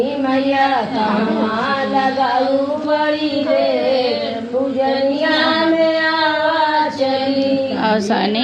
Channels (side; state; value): both; identical; correlation 1.00